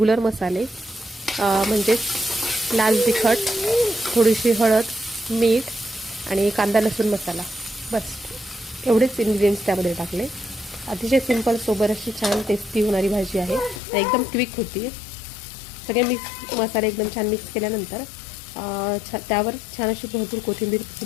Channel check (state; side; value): drops out; right; at 13.8 s